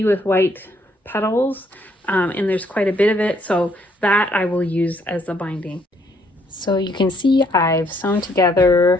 with white petals, and there's quite a bit of it, so that I will use as the binding. So you can see I've sewn together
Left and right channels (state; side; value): normal; both; correlation 0.68